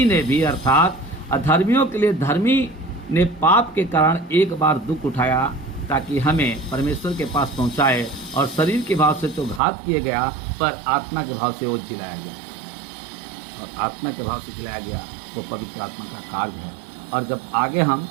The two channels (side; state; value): left; drops out; at 9.6 s